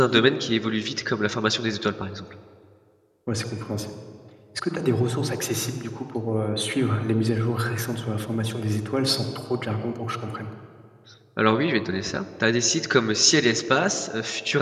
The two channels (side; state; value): both; identical; correlation 1.00